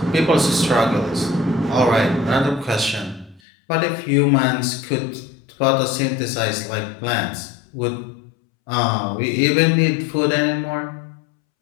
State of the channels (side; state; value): right; drops out; at 3.4 s